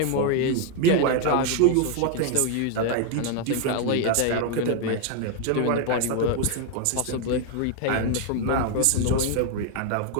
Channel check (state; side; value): different; both; correlation 0.01